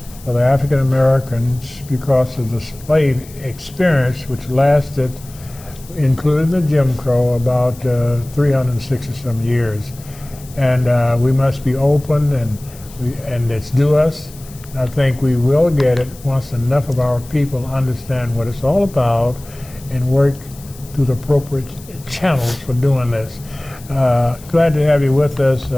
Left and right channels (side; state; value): left; noise; hiss, 21 dB below the sound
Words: for the African Americans because of the slave experience, which lasted, including the Jim Crow, about 360 some years. And we must be open, and it's due us. And I think we will get it once enough of our people understand what it's all about and work through the appropriate channels for doing this. Glad to have you with us.